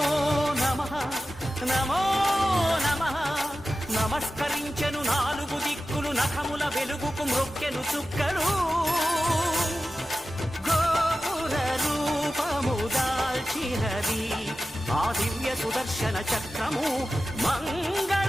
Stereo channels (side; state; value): both; normal; correlation 0.94